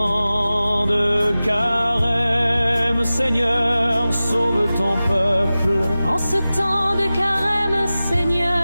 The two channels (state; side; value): inverted; both; correlation -0.96